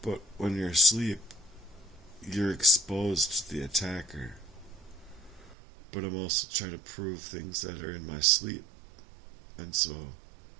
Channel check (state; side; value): drops out; left; at 5.6 s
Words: But when you're asleep, you're exposed to the attacker. But I'm also trying to prove things that are in my sleep. And so